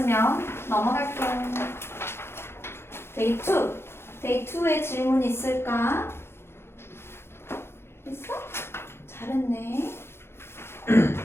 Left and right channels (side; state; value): right; late; 0.12 ms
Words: 넘어갈게요. 데이 2, 데이 2의 질문 있을까? 있어? 잘했네.